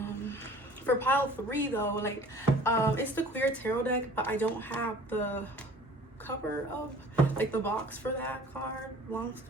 For pile 3 though, like, it's the Queer tarot deck, but I don't have the cover of, like, the box for that card. Long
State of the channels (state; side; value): normal; both; correlation 0.48